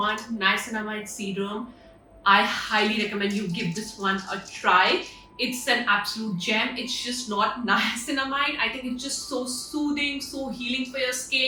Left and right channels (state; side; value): identical; both; correlation 1.00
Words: niacinamide serum, I highly recommend you give this one a try. It's an absolute gem. It's just not niacinamide. I think it's just so soothing, so healing for your